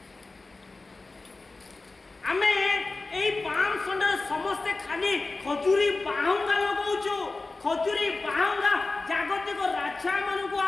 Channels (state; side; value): quieter; right; 3.5 dB